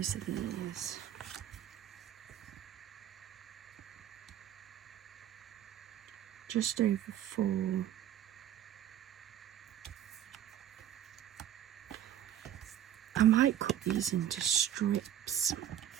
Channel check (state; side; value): quieter; left; 11.0 dB